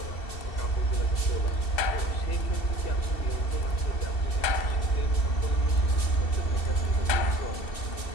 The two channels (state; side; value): late; right; 2.7 ms